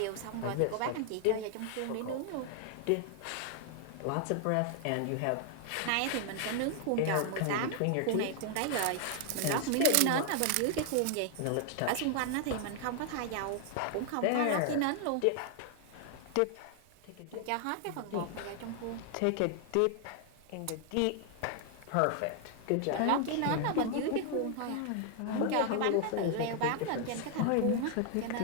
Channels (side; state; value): both; different; correlation 0.00